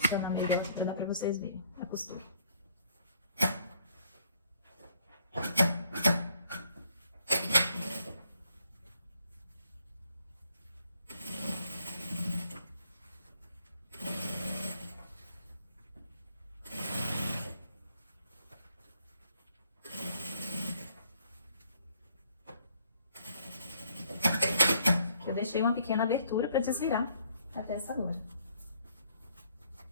melhor pra dar pra vocês verem a costura. Eu deixei uma pequena abertura para desvirar a peça agora.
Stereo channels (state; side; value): inverted; both; correlation -0.66